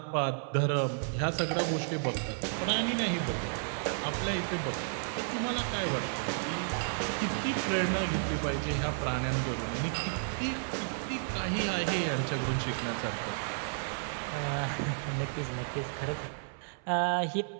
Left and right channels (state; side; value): silent; left; 56 dB below the other